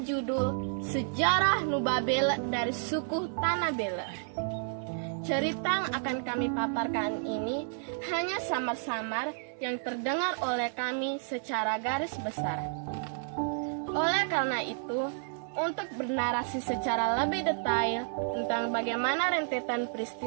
judul Sejarah Nubabela dari Suku Tanah Bela. Cerita yang akan kami paparkan ini hanya samar-samar yang terdengar oleh kami secara garis besar. Oleh karena itu, untuk bernarasi secara lebih detail tentang bagaimana rentetan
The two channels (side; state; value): left; silent; 57 dB below the other